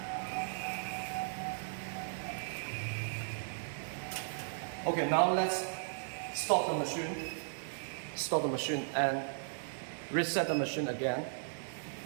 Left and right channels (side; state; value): left; silent; digital silence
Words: Okay, now let's stop the machine and reset the machine again.